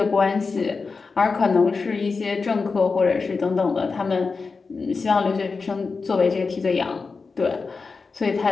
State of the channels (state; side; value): quieter; right; 4.5 dB